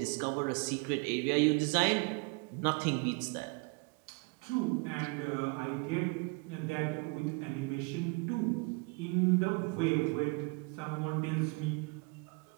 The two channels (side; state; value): left; quieter; 30.9 dB